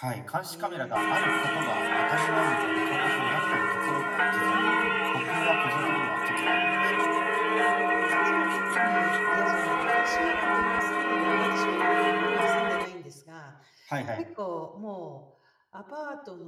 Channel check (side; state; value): both; identical; correlation 1.00